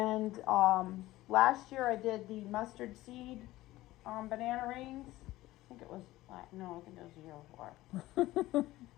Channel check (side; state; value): right; quieter; 17.0 dB